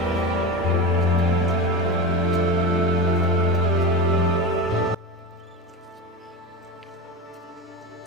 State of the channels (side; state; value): both; normal; correlation 0.24